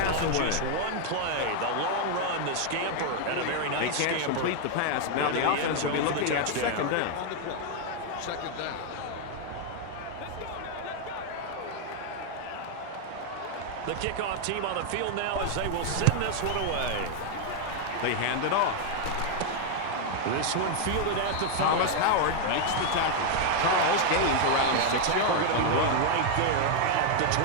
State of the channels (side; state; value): both; different; correlation 0.00